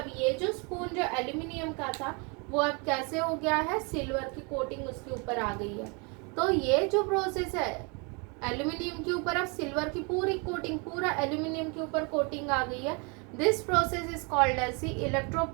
ये जो स्पून जो एल्यूमिनियम का था वो अब कैसे हो गया है, सिल्वर की कोटिंग उसके ऊपर आ गई है। तो ये जो प्रोसेस है, एल्यूमिनियम के ऊपर अब सिल्वर की पूरी कोटिंग, पूरा एल्यूमिनियम के ऊपर कोटिंग आ गई है। This process is called as the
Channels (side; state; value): left; quieter; 32.3 dB